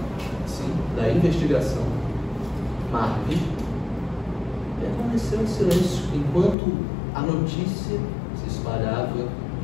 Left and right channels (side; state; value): right; drops out; at 6.6 s